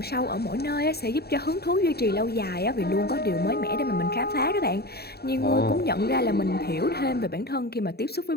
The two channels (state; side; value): late; right; 0.46 ms